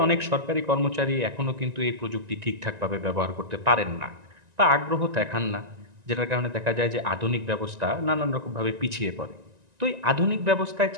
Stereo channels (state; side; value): late; left; 1.9 ms